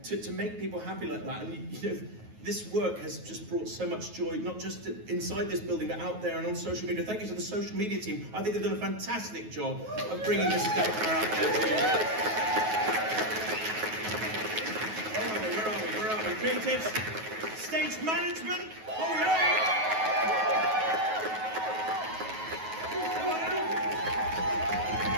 to make people happy like that. And this work has just brought so much joy, not just inside this building, but out there and on social media. Thank you to the social media team. I think they've done a fantastic job of bringing Mrs. Doubtfire out there. Creatives, stage management, oh yeah!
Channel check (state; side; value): late; left; 9.3 ms